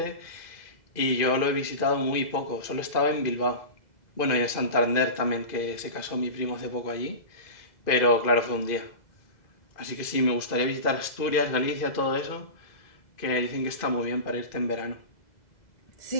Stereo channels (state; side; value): late; right; 2.5 ms